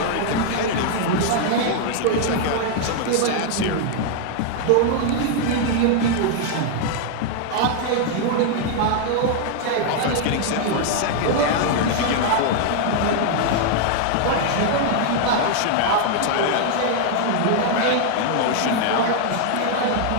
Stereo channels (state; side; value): different; both; correlation 0.00